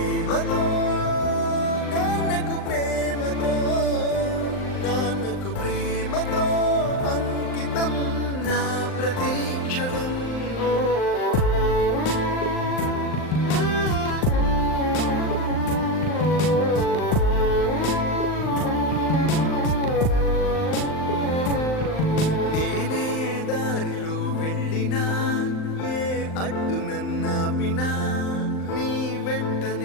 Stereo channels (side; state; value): right; late; 39 ms